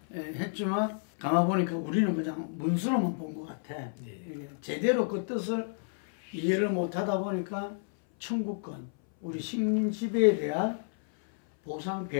예, 했지만 가만보니까 우리는 그냥 문서로만 본 것 같아. 예. 제대로 그 뜻을 이해를 못하다 보니까 청구권, 우리 식민 지배에 대한 보상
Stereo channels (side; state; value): right; silent; 57 dB below the other